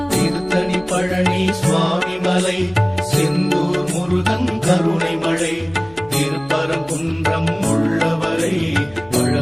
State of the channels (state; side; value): noise; left; hum, 26 dB below the sound